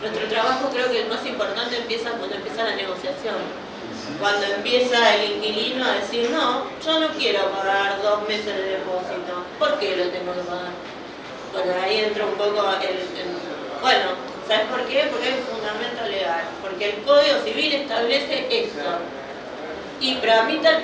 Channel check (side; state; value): both; identical; correlation 1.00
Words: trabajo creo que el más importante empieza cuando empieza la negociación. Cuando empieza el inquilino a decir, no, yo no quiero pagar 2 meses de depósito. ¿Por qué lo tengo que pagar? Bueno, ahí entra un poco bueno, ¿sabes por qué? Porque hay un fundamento legal. Porque el Código Civil establece esto. Y tramita el